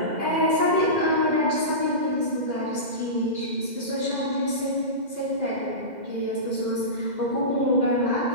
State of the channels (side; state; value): left; late; 2.0 ms